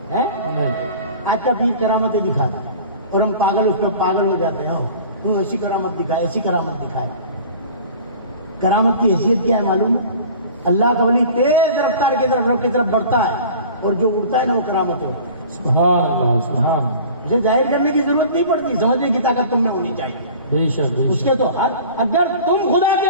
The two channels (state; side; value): inverted; both; correlation -0.43